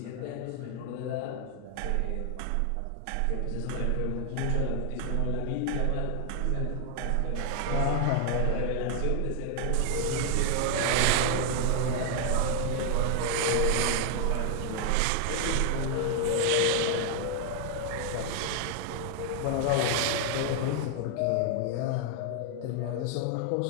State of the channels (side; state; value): both; different; correlation 0.00